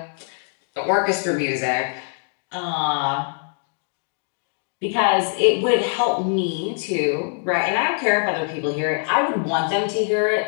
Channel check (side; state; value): right; silent; 63 dB below the other